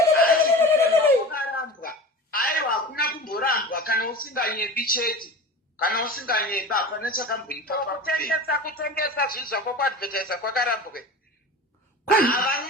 aiwa hakuna kumborambwa kana usinganyebi chete kana usinganyeba hapana chakamboipa kutengesa zvinhu zvako kuadvertisa kwakarambwe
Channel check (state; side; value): normal; both; correlation 0.34